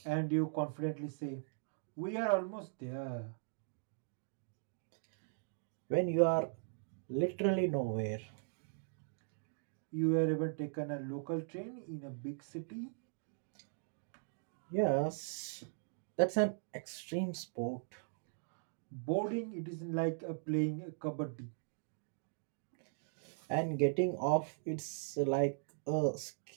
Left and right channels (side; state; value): left; silent; digital silence